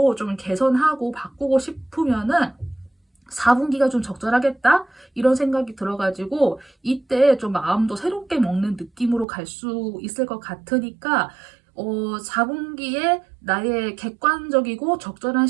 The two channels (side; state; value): left; drops out; at 9.2 s